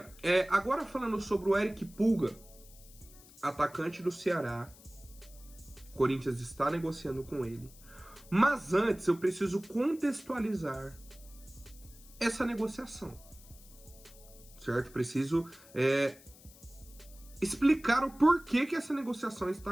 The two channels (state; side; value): noise; left; hiss, 22 dB below the sound